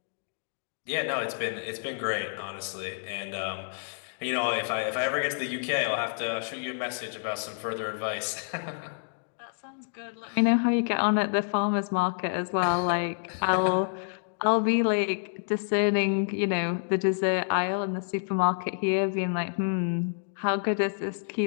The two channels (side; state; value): right; silent; digital silence